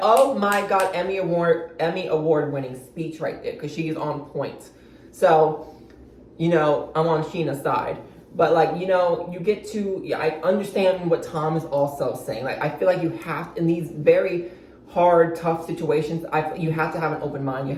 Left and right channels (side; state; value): both; identical; correlation 1.00